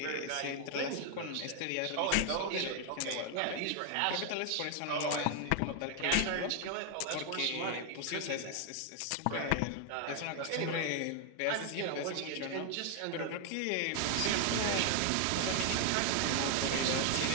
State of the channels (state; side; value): different; both; correlation 0.00